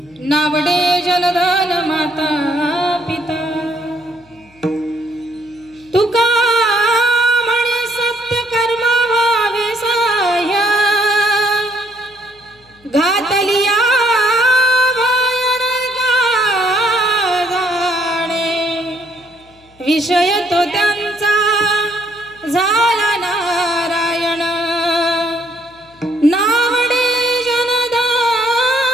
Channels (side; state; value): left; noise; hum, 30 dB below the sound